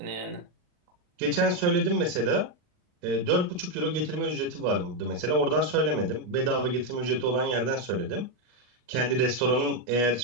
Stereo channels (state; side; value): late; left; 39 ms